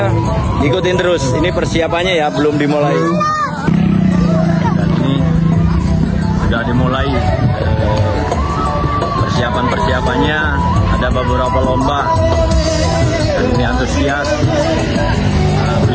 Ikutin terus. Ini persiapannya ya, belum dimulai. Dan ini sudah dimulai persiapan-persiapannya. Ada beberapa lomba. Dan ini antusias.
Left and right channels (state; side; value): identical; both; correlation 1.00